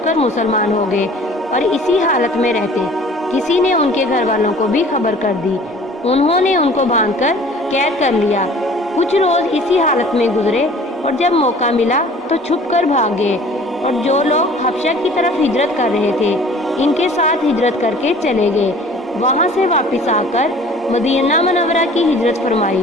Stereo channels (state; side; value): normal; both; correlation 0.49